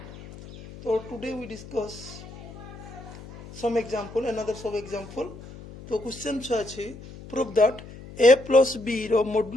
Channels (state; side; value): noise; left; hum, 16 dB below the sound